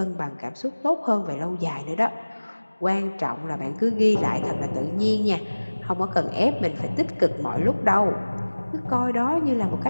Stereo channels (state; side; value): inverted; both; correlation -1.00